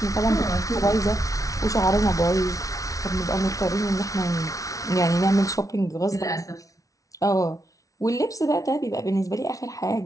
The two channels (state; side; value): late; right; 0.17 ms